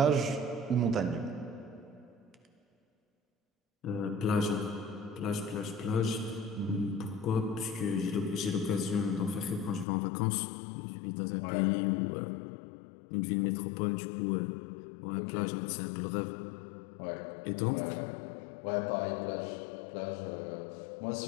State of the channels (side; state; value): right; drops out; at 9.9 s